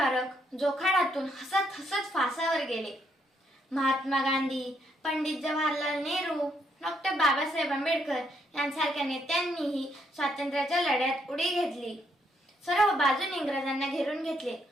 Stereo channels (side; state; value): both; normal; correlation 0.74